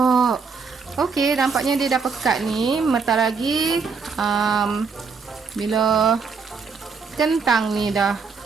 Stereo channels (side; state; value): left; quieter; 5.1 dB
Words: Okey, nampaknya dia dah pekat ni. Bentar lagi bila kentang ni dah